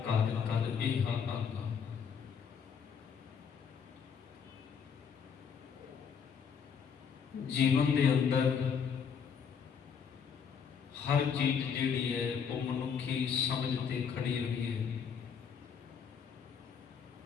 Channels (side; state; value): right; quieter; 6.9 dB